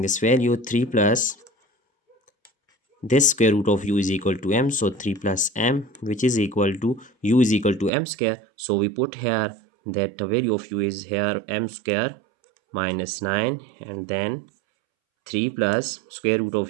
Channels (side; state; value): left; drops out; at 7.9 s